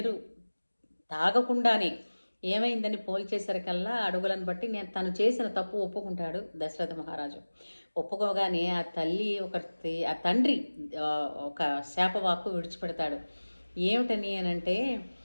తాగకుండానే ఏమైందని పోల్చేసరికల్లా అడుగులను బట్టి నేను తను చేసిన తప్పు ఒప్పుకుంటాడు దశరథ మహారాజు. ఒప్పుకోగానే ఆ తల్లి ఆ తండ్రి ఒక శాపవాక్కు విడిచిపెడతాడు. ఏమిటని అనంటే,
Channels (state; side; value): inverted; both; correlation -1.00